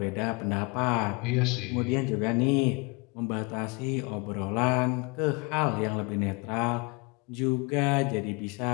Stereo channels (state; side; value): quieter; right; 29.0 dB